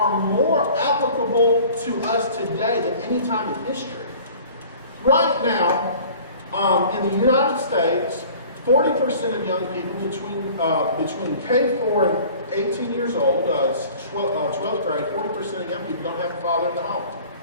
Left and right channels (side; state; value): both; inverted; correlation -0.47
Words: more applicable to us today than any time in history. Right now, in the United States, 40% of young people between K4 18 years old, 12th grade, 40% of young people don't have a father in the home.